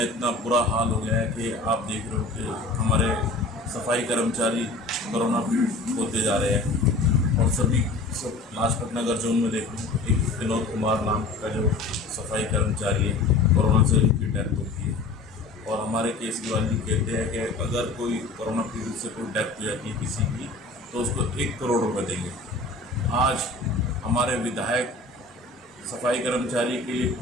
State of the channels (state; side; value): quieter; right; 3.2 dB